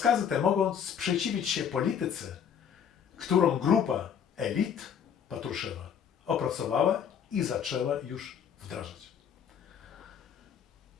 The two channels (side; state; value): right; quieter; 8.0 dB